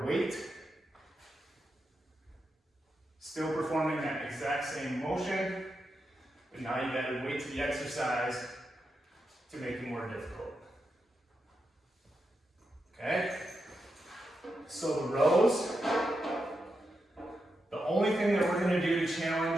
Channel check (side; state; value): both; normal; correlation 0.86